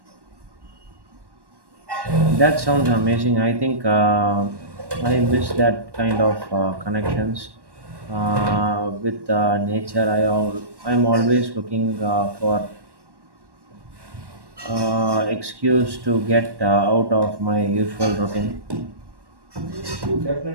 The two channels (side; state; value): left; late; 1.1 ms